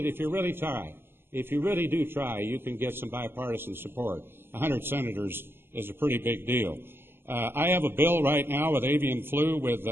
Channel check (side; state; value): left; late; 0.11 ms